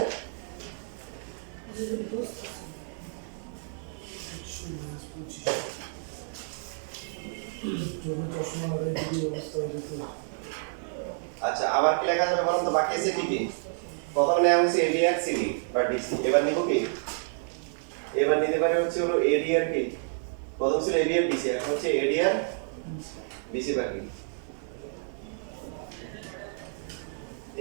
আচ্ছা আবার কি লেখা যাবে বলুন তো বাকি আছে কি কি প্রথম নেওয়া হয়েছে এডি আর সিডি বা ডিসি এবার নিব কি এবার নিতে পারে হচ্ছে হলো এডি আর কি প্রথম ছিল এডি আর ডিসি এখন হচ্ছে এডি আর ডিসি বাকি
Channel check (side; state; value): left; silent; digital silence